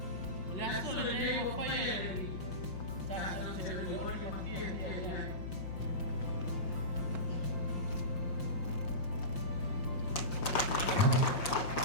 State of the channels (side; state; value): right; late; 5.7 ms